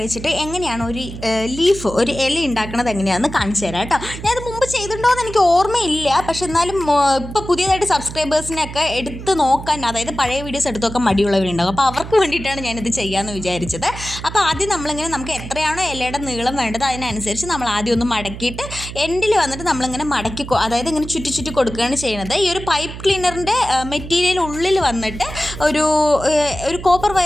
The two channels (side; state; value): right; noise; hum, 11 dB below the sound